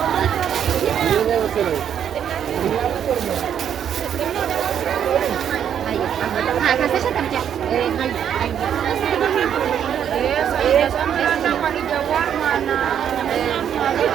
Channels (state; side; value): quieter; left; 9.0 dB